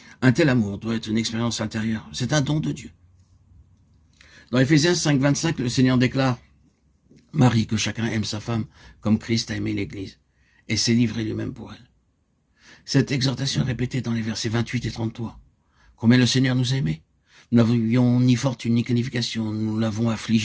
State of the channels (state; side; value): identical; both; correlation 1.00